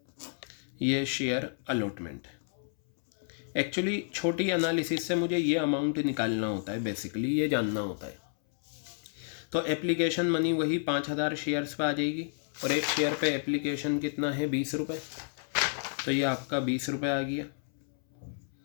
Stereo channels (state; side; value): silent; right; 57 dB below the other